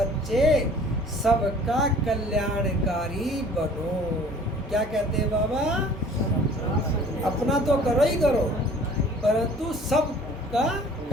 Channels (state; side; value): normal; both; correlation 0.50